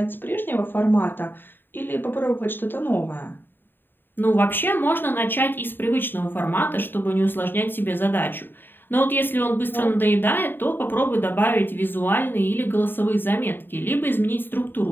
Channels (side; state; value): right; late; 0.095 ms